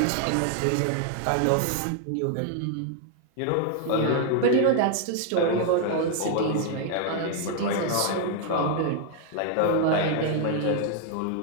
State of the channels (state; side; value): different; both; correlation 0.00